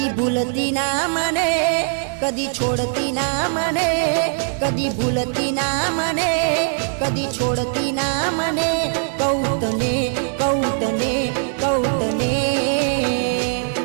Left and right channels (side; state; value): left; silent; digital silence